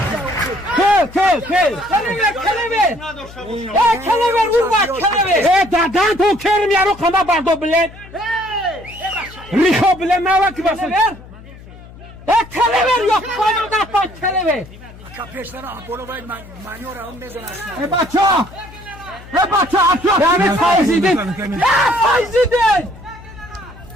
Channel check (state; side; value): noise; left; hum, 19 dB below the sound